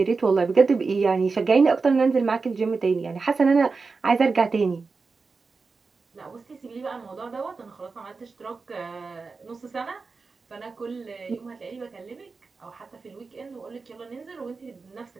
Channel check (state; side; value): quieter; left; 4.4 dB